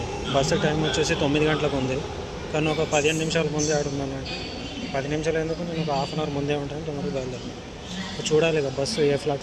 బస్సు టైం వచ్చేసి 9 గంటలకు ఉంది, కానీ ఒక 15 నిమిషాల ముందే ఆడున్నాను. 10 నిమిషాలు ఎందుకు, నేను ఒక హాఫ్ అన్ అవర్ ముందే ఉంటాను. తొందరగా బయలుదేరాను. చూడాలి ఇక బస్సు ఏ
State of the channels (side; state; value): both; identical; correlation 1.00